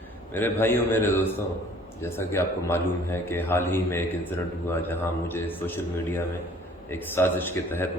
میرے بھائیوں، میرے دوستوں، جیسا کہ آپ کو معلوم ہے کہ حال ہی میں ایک انسیڈنٹ ہوا جہاں مجھے سوشل میڈیا میں ایک سازش کے تحت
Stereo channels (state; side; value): normal; both; correlation 0.53